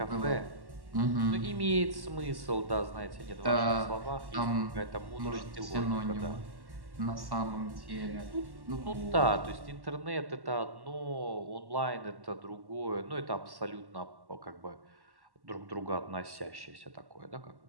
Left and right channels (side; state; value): left; late; 1.1 ms